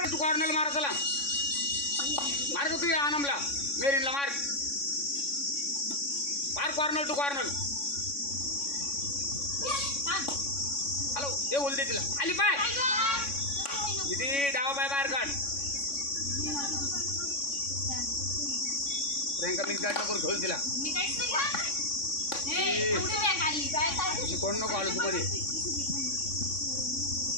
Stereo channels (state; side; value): late; right; 3.6 ms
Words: तू कॉर्नरला मार. चला मार का तू या आनमला मेरीनला मार कॉर्नर टू कॉर्नर. हॅलो ते बोलते तिला आली पाय किती डावा पाय बाहेर काढ. प्रियंका मिक्स गाडी नको घेऊन तिला. कोण नको आलो तू मध्ये.